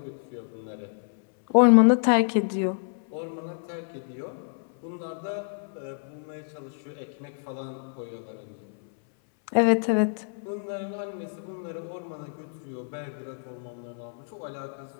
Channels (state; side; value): silent; right; 59 dB below the other